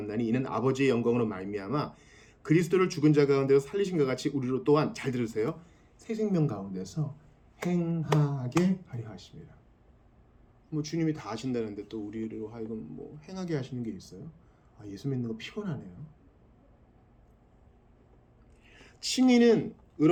이는 아버지의 영광으로 말미암아 그리스도를 죽은 자 가운데서 살리신 것 같이 우리로 또한 잘 들으세요. 새 생명 가운데서 행하게 하려 하십니다. 뭐 주님이 다 하신다는데 또 우리로 하여금 뭐 행하게 하시는 게 있어요? 아, 예수 믿는 거 피곤하네요. 칭의는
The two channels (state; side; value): identical; both; correlation 1.00